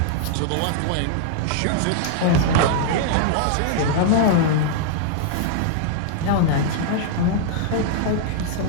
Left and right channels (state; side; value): different; both; correlation -0.01